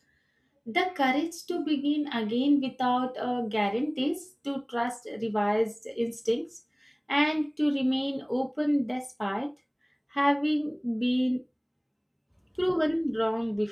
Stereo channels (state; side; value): identical; both; correlation 1.00